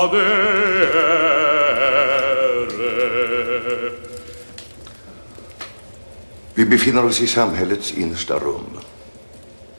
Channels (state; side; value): inverted; both; correlation -1.00